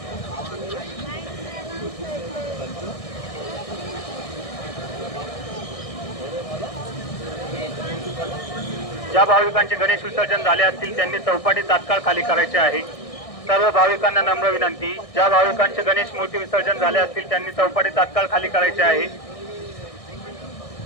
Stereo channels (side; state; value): right; late; 1.6 ms